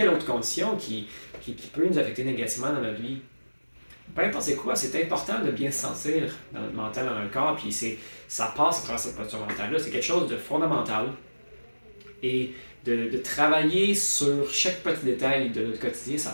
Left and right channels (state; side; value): inverted; both; correlation -1.00